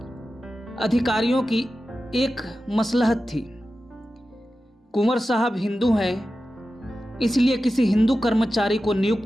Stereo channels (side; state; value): both; normal; correlation 0.93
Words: अधिकारियों की एक मसलहत थी। कुंवर साहब हिंदू हैं, इसलिए किसी हिंदू कर्मचारी को